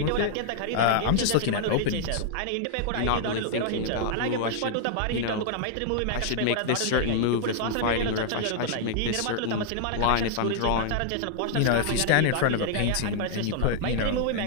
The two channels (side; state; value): both; different; correlation -0.01